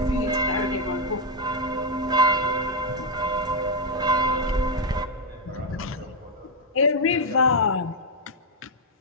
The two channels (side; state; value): both; normal; correlation 0.01